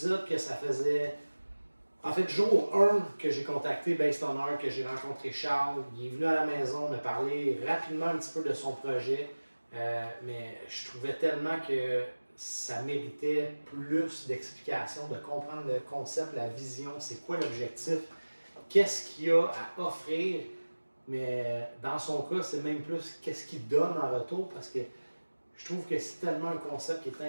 que ça faisait, en fait, jour 1 que j'ai contacté Based on Art, que j'ai rencontré Charles. Il est venu à la maison me parler rapidement un petit peu de son projet, mais je trouvais tellement que ça méritait plus d'explications, de comprendre le concept, la vision, c'est quoi l'objectif, qu'est-ce qu'il y a à offrir, mais dans son cas, c'est même plus qu'est-ce qu'il donne en retour, parce que je trouve que c'est tellement un concept qui est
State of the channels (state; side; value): inverted; both; correlation -1.00